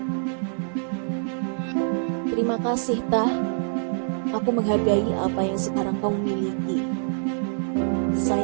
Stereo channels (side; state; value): left; silent; digital silence